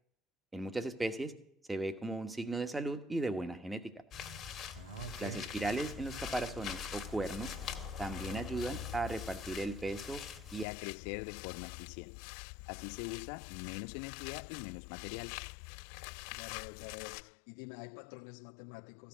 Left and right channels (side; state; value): right; drops out; at 10.7 s